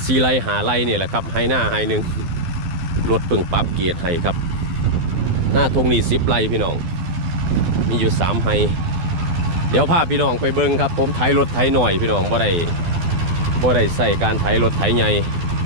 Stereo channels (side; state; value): left; late; 12 ms